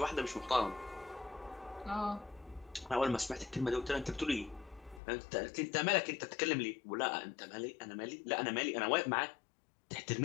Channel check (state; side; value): drops out; right; at 5.0 s